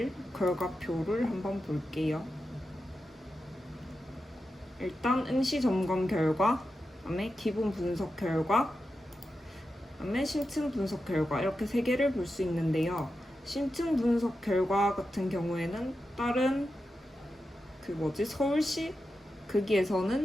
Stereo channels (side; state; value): both; normal; correlation 0.90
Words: 결과표를 한번 볼게요. 일단 응시 점검 결과, 그다음에 기본 분석 결과, 그다음에 심층 분석 결과 이렇게 세 개를 볼 수 있는데요. 심층 분석 결과 같은 경우에는 다른 서울시